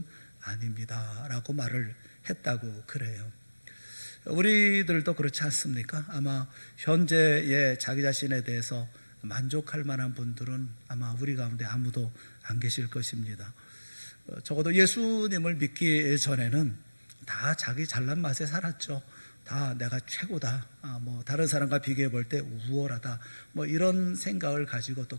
아닙니다 라고 말을 했다고 그래요. 우리들도 그렇지 않습니까? 아마 현재의 자기 자신에 대해서 만족할 만한 분들은 아마 우리 가운데 아무도 안 계실 것입니다. 적어도 예수님을 믿기 전에는 다 자기 잘난 맛에 살았죠. 다 내가 최고다, 다른 사람과 비교해 볼 때 우월하다, 이런 생각을 가지고 또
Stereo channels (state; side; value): inverted; both; correlation -1.00